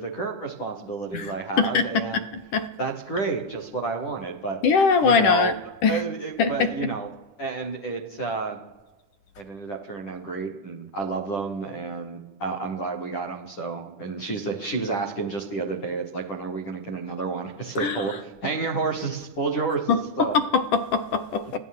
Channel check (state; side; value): late; right; 10 ms